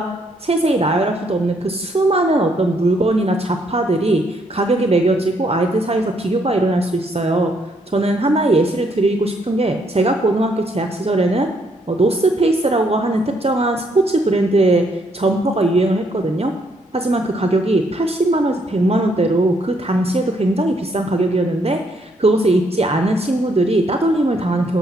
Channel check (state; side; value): normal; both; correlation 0.71